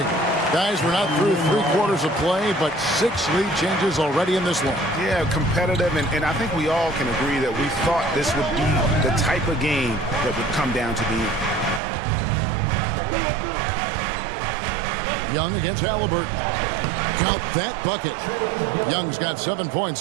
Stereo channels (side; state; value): left; drops out; at 11.8 s